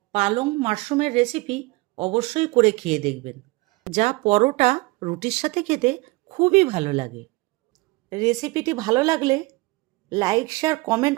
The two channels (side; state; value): left; quieter; 23.7 dB